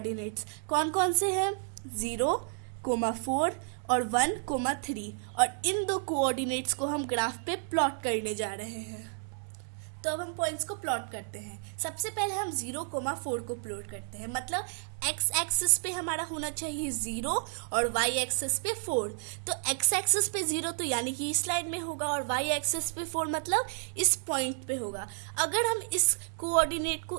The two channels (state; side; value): silent; left; digital silence